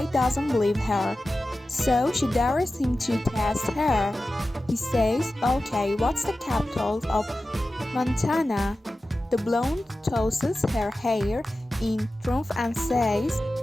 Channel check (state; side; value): normal; both; correlation 0.94